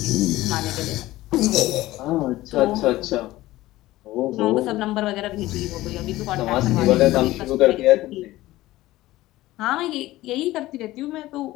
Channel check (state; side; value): quieter; right; 16.9 dB